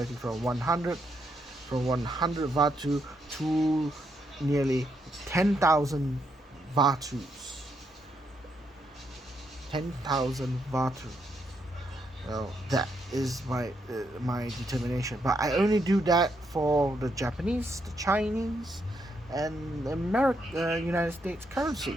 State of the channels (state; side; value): normal; both; correlation 0.78